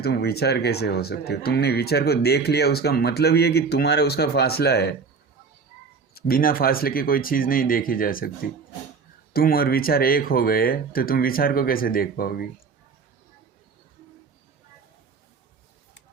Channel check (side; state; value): left; quieter; 5.1 dB